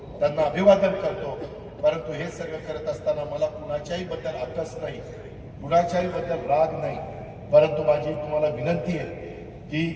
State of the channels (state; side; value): identical; both; correlation 1.00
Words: त्यांना अभिवादन करतो। परंतु हे सगळं करत असताना मला कुणाच्याही बद्दल आकस नाही, कुणाच्याही बद्दल राग नाही, परंतु माझी तुम्हाला विनंती आहे